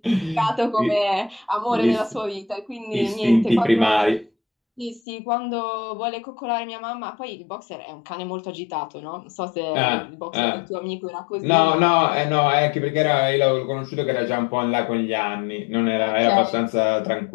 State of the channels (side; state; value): right; drops out; at 5.0 s